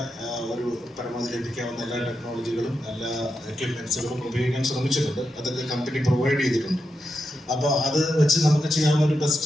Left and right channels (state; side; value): normal; both; correlation 0.87